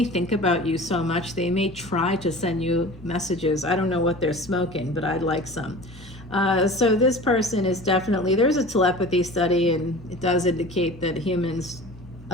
think about you so much, they may try to send you messages. I don't know what they're smoking, but I'd like some. So this person is definitely, there's a telepathy study, and it does indicate that humans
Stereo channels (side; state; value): both; normal; correlation 0.39